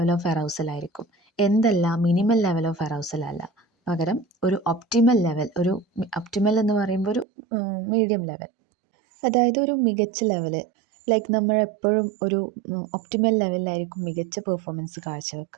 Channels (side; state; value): left; drops out; at 7.2 s